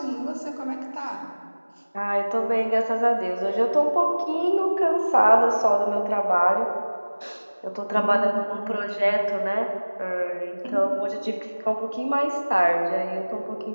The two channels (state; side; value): inverted; both; correlation -1.00